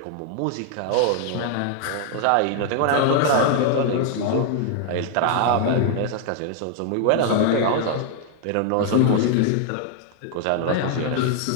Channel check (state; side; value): different; both; correlation 0.00